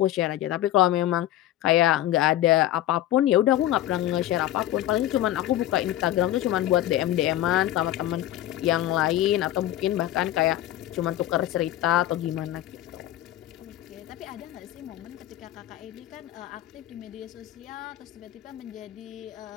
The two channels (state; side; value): quieter; right; 13.6 dB